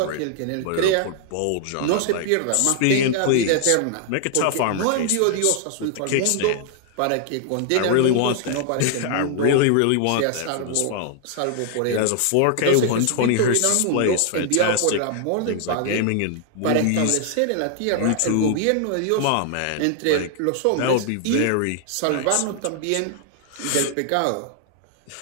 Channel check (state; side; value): different; both; correlation 0.00